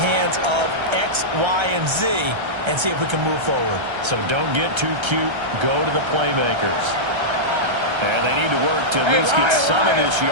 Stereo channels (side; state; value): left; late; 1.3 ms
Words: hands of X, Y, and Z and see if we can move forward. So don't get too cute. Go to the playmakers. And they need to work to at least get some of this